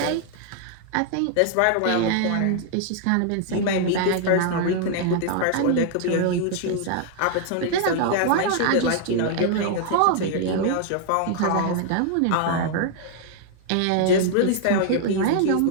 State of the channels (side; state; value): both; different; correlation 0.00